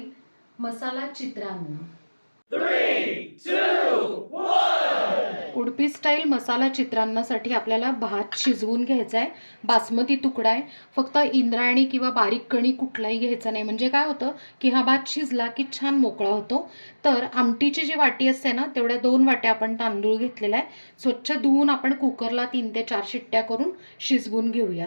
मसाला चित्रान्न. उडपी स्टाईल मसाला चित्रान्नासाठी आपल्याला भात शिजवून घ्यायचा आहे. बासमती तुकडा आहे. फक्त इंद्रायणी किंवा बारीक कणी कुठलाही घ्यायचा नाही. म्हणजे काय होतं की हा भात शिजला की छान मोकळा होतो. तर आमटीची जी वाटी असते ना तेवढ्या 2 वाट्या आपण तांदूळ घेतलेला आहे. स्वच्छ धुवून आपण कुकरला 3 ते 4 शिट्ट्या करून शिजवून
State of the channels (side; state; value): both; inverted; correlation -1.00